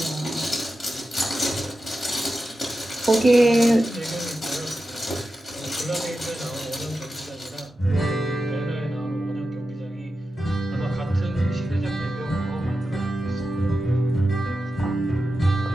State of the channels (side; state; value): both; normal; correlation 0.91